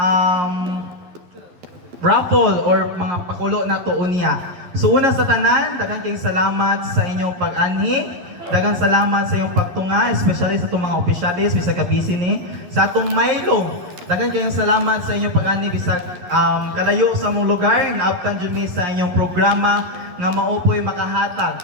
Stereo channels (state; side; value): late; left; 11 ms